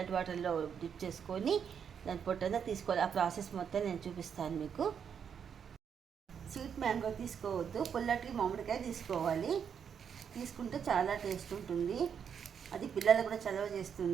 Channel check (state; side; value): quieter; left; 7.5 dB